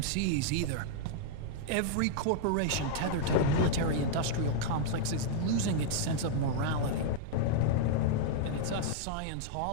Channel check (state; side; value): different; both; correlation -0.01